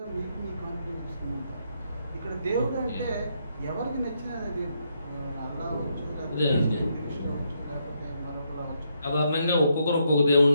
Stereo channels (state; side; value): inverted; both; correlation -0.77